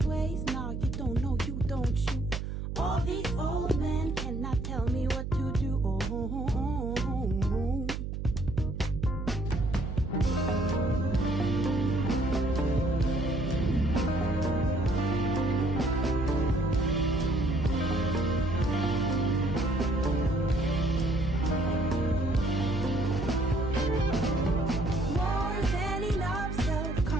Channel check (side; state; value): right; noise; hum, 5 dB below the sound